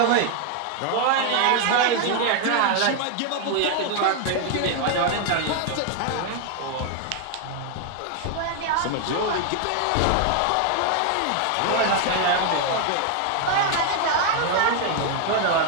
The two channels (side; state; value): both; different; correlation 0.00